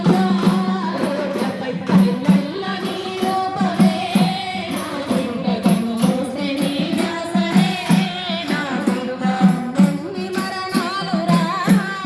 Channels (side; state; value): both; identical; correlation 1.00